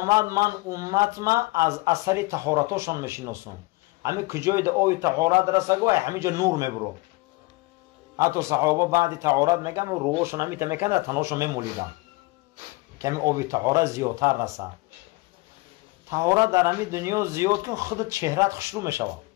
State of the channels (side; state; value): right; quieter; 23.7 dB